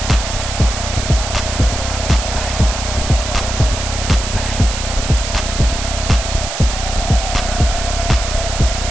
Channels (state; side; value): noise; right; hiss, 6 dB below the sound